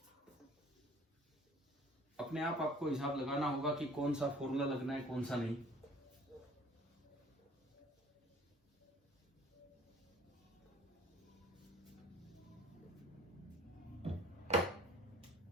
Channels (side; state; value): both; normal; correlation 0.51